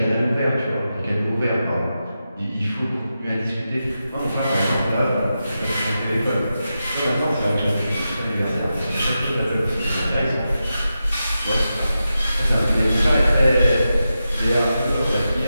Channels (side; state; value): both; inverted; correlation -0.90